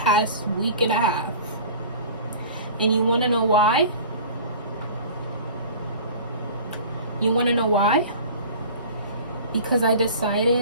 week and a half. And you want to know why? You want to know why? Because I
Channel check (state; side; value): inverted; both; correlation -0.41